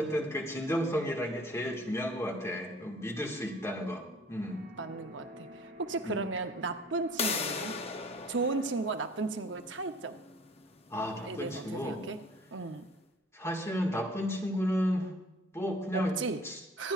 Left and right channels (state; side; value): normal; both; correlation 0.51